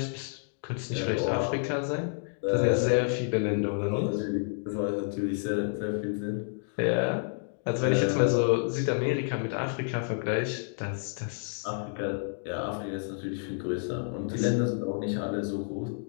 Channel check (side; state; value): right; silent; digital silence